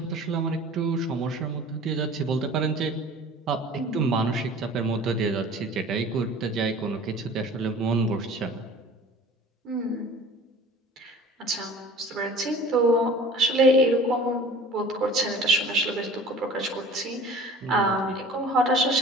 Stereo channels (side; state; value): both; normal; correlation 0.44